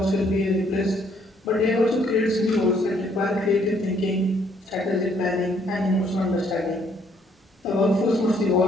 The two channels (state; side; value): normal; both; correlation 0.66